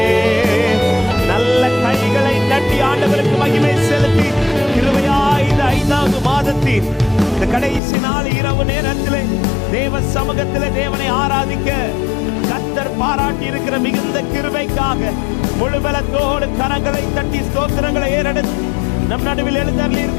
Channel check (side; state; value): right; drops out; at 7.8 s